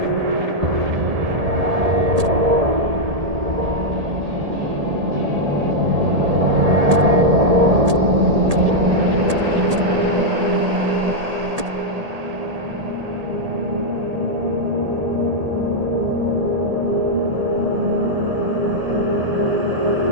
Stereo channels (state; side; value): late; left; 1.8 ms